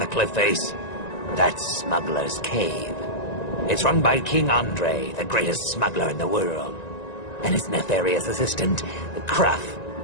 cliff face? That's Smuggler's Cave. It's run by King Andre, the greatest smuggler in the world. And his nefarious assistant, Cruff.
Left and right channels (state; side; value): late; right; 1.9 ms